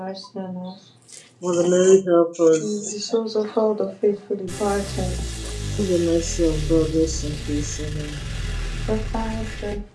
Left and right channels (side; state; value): both; identical; correlation 1.00